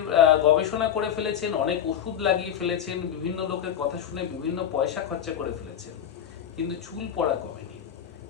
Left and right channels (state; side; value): quieter; right; 9.4 dB